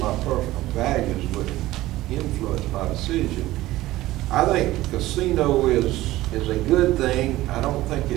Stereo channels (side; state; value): left; quieter; 16.6 dB